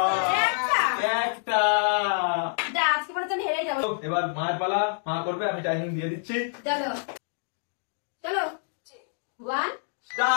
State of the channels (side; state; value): right; silent; digital silence